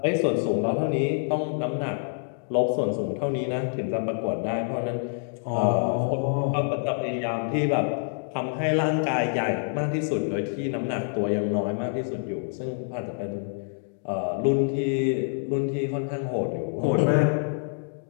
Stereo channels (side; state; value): right; silent; digital silence